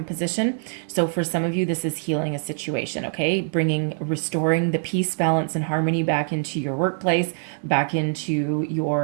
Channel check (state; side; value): silent; left; digital silence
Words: position. So for some of you, this is healing a situation. Okay. Restoring the peace, balance, and harmony back into your workplace, back into